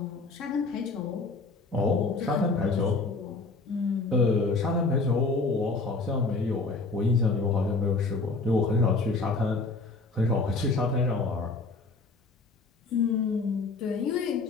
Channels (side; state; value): right; quieter; 3.7 dB